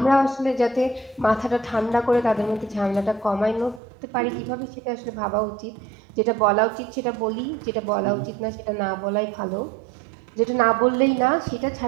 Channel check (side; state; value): left; drops out; at 3.8 s